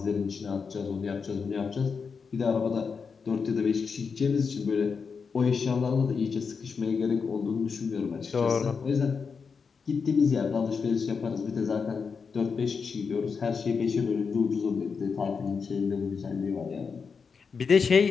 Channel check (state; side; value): quieter; right; 5.5 dB